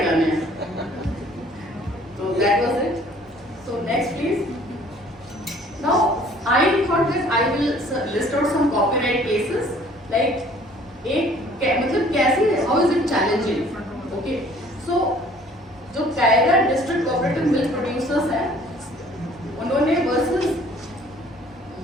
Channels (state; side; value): normal; both; correlation 0.55